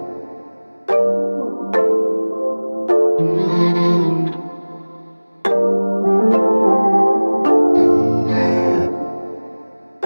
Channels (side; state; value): both; inverted; correlation -1.00